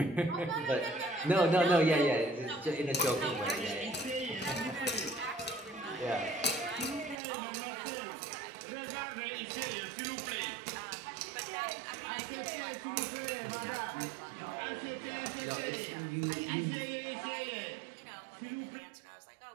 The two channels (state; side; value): drops out; left; at 7.2 s